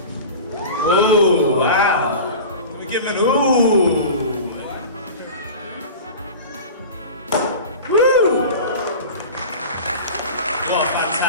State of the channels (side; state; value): both; inverted; correlation -0.34